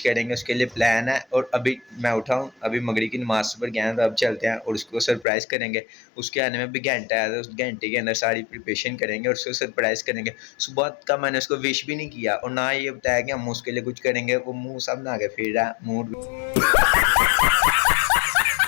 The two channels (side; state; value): right; drops out; at 5.2 s